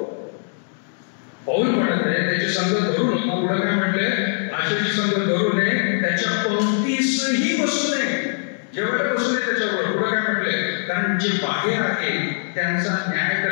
पाऊल म्हणत आहे त्याची संगत धरू नको. पुढे काय म्हटले, अशाची संगत धरू नये, त्याच्या पंक्तीसही बसू नये. जेवढे बसू नये त्याच्यावर. पुढे काय म्हटले, कारण जे बाहेर आहे त्यांचा न्याय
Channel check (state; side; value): silent; right; digital silence